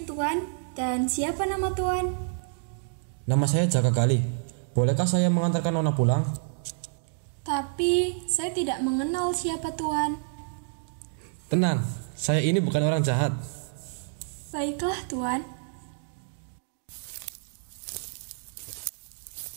Tuan. Dan siapa nama Tuan? Nama saya Jaka Gali. Bolehkah saya mengantarkan Nona pulang? Tapi saya tidak mengenal siapa Tuan. Tenang, saya ini bukan orang jahat. Baiklah Tuan.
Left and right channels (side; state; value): left; silent; digital silence